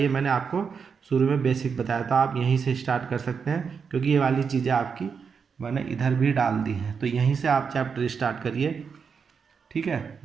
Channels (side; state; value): left; quieter; 6.1 dB